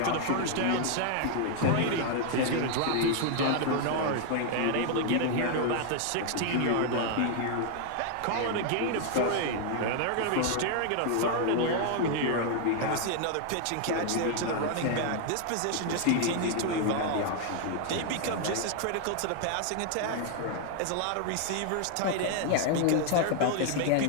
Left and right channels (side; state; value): both; different; correlation 0.00